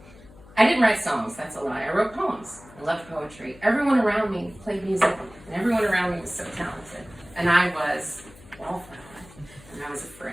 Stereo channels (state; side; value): noise; left; hum, 22 dB below the sound